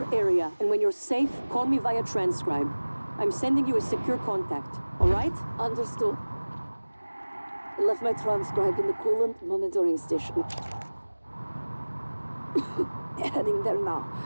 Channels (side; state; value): both; inverted; correlation -1.00